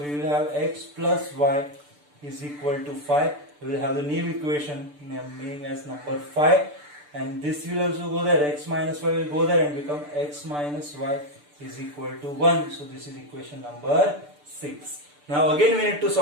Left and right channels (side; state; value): left; late; 6.8 ms